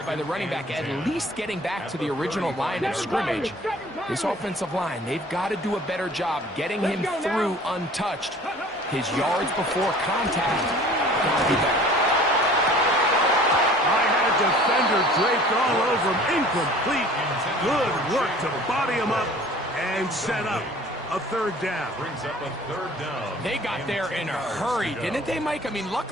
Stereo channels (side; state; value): both; normal; correlation 0.48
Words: by the running back, at least getting back to the original line of scrimmage. This offensive line, they've got to do a better job getting him through untouched. His yards before contact got to be better. I had a defender draped all over him. Incomplete. Good work to body him up and set up a 3rd down. Brings up a 3rd down. They got there in a hurry, didn't they, Mike? I mean,